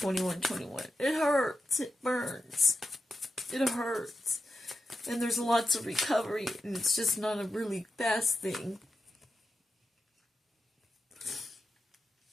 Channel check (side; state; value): both; normal; correlation 0.89